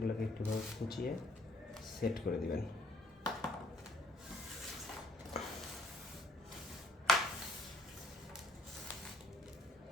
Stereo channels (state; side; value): normal; both; correlation 0.61